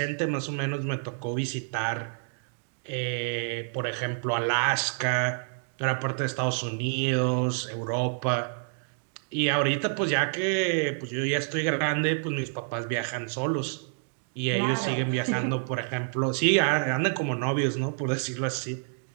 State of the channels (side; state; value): left; silent; digital silence